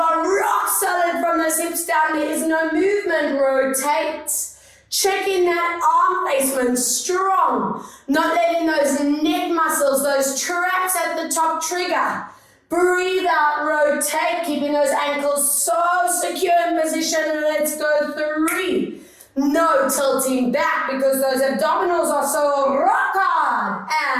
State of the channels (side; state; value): both; identical; correlation 1.00